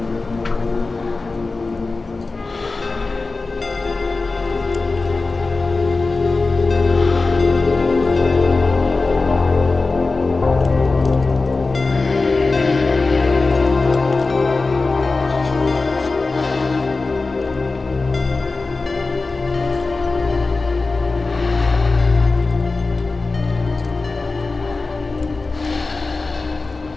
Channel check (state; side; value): quieter; right; 3.7 dB